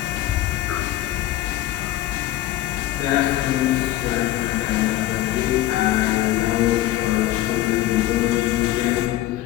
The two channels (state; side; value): quieter; right; 14.8 dB